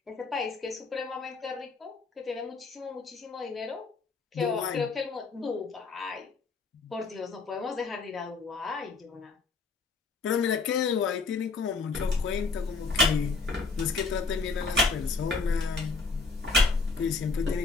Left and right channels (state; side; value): quieter; right; 4.2 dB